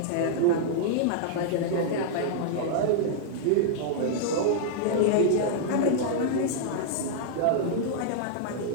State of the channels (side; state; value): both; different; correlation -0.01